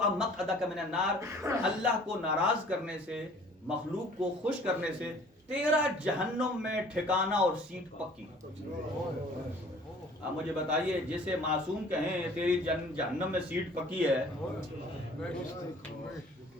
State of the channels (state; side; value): normal; both; correlation 0.51